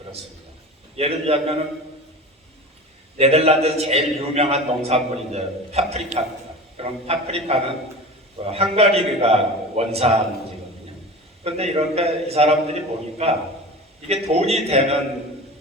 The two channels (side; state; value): both; normal; correlation 0.33